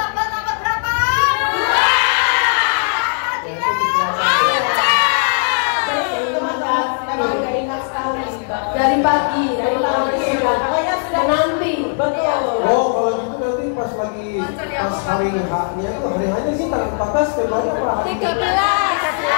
Memang udah ingat sekali Dari pagi sudah menanti. Betul. Oh kalau gitu nanti pas hari H-nya itu hari H-nya sih tanggal 14 Februari apa hari 13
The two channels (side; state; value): right; silent; 61 dB below the other